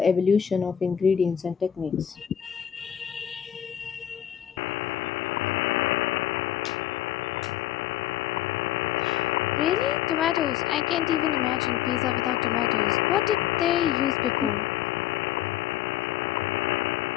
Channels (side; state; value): right; quieter; 10.7 dB